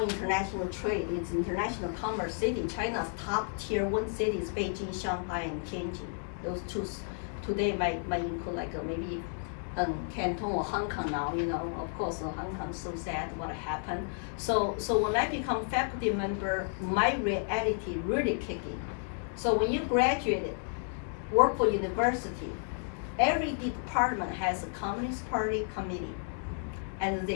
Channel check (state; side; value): silent; right; 56 dB below the other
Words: international trade. It's international commerce city. China's top tier 1 cities, Beijing, Shanghai, and Tianjin. Those two today might include like maybe Canton or Hong Kong now. Of course, Hong Kong's so sad what happened. So when I become faculty member, my reality really kicked in. So when you graduated, work for university, every department has a Communist Party committee, and